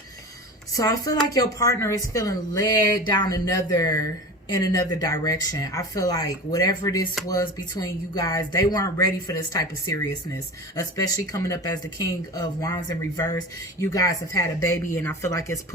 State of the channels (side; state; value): both; normal; correlation 0.32